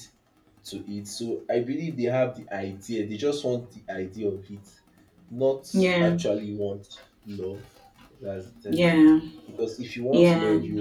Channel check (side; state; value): both; identical; correlation 1.00